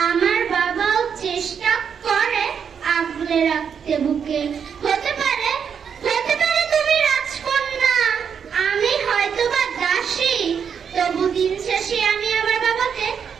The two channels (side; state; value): left; quieter; 7.2 dB